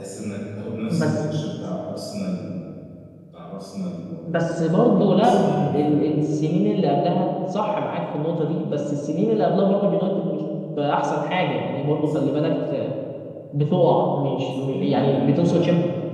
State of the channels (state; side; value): identical; both; correlation 1.00